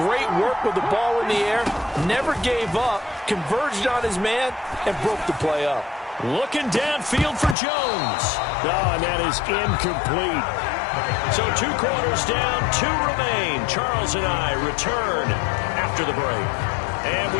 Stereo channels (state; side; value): drops out; right; at 7.6 s